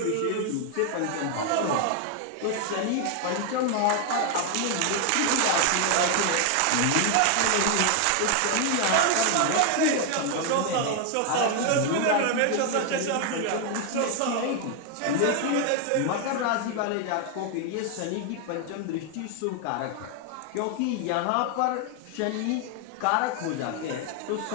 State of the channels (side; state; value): both; different; correlation 0.01